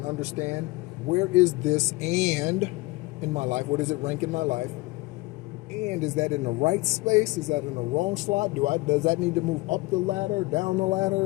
understand, where is this and in my life? What does it rank in my life? And is that in the right space? Is that in the wrong slot? Does that need to move up the ladder, down the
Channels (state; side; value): quieter; right; 21.7 dB